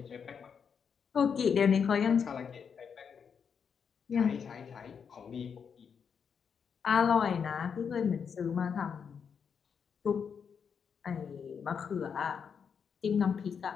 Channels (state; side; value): quieter; right; 6.7 dB